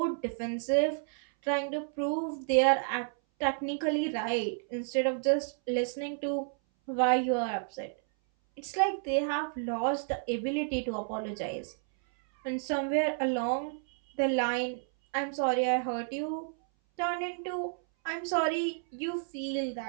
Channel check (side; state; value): left; silent; 57 dB below the other